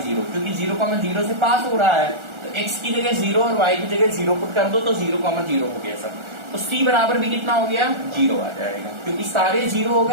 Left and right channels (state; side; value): late; left; 1.4 ms